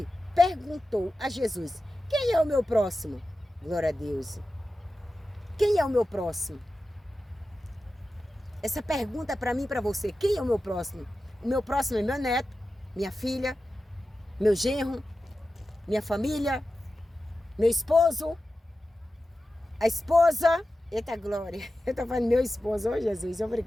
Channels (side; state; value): both; normal; correlation 0.93